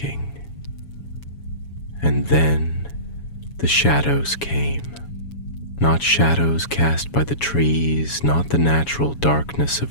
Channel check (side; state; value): right; late; 7.1 ms